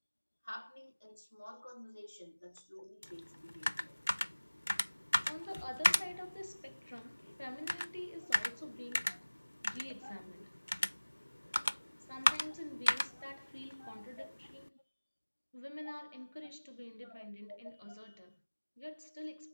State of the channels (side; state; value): both; inverted; correlation -1.00